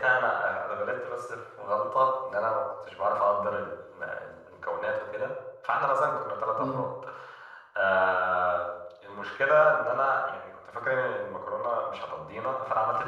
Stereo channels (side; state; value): both; identical; correlation 1.00